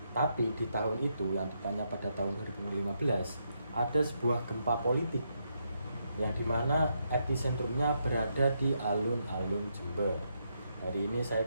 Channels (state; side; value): inverted; both; correlation -0.79